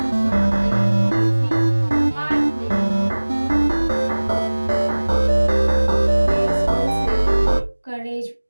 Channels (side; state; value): both; inverted; correlation -1.00